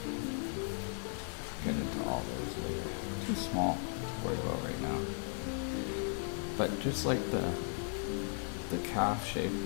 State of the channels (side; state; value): right; silent; 53 dB below the other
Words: Get into all those later. Too small to worry about right now. But just like the calf shape,